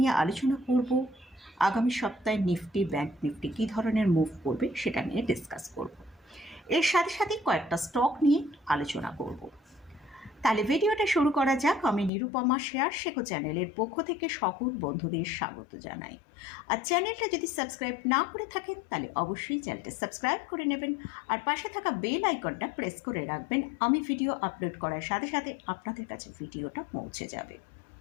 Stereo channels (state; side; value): drops out; right; at 12.1 s